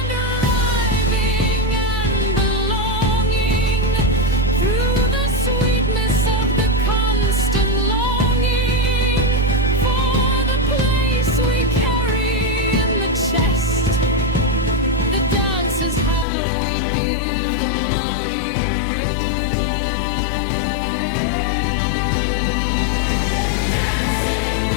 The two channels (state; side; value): drops out; right; at 16.2 s